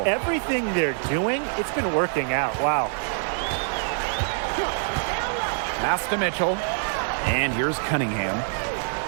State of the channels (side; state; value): left; silent; 57 dB below the other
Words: Everything they're doing, it's been working out. Wow. Pass to Mitchell, and here's Cunningham.